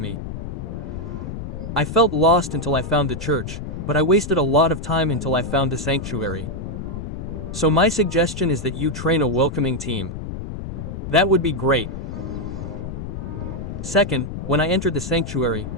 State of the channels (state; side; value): noise; left; rumble, 7 dB below the sound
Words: I felt lost until I found the church, but I wasted a lot of time until I found the sanctuary. So my suggestion is that you train a welcoming team. That would be great. Second, when I entered the sanctuary,